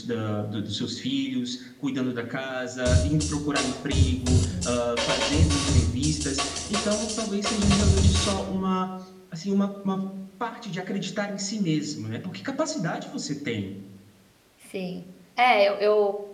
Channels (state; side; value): identical; both; correlation 1.00